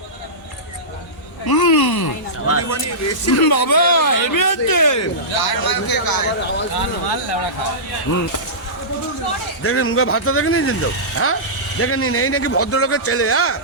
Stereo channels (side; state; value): both; normal; correlation -0.18